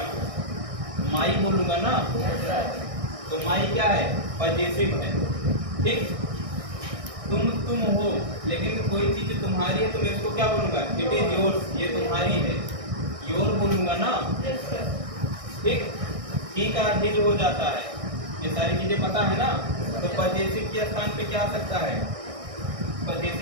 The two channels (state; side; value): late; left; 1.6 ms